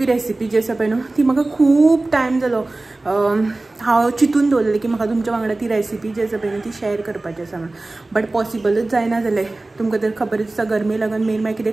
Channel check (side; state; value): left; quieter; 3.0 dB